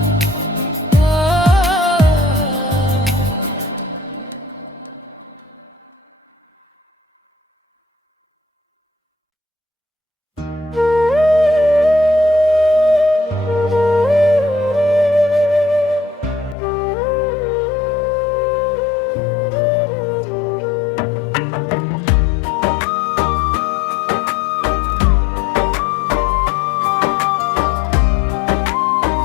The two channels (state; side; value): drops out; right; at 16.6 s